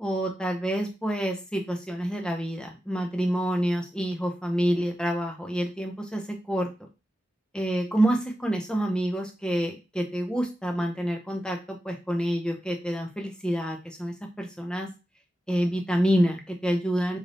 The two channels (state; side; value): normal; both; correlation 0.91